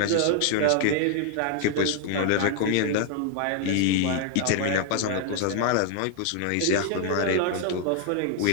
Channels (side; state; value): both; different; correlation 0.00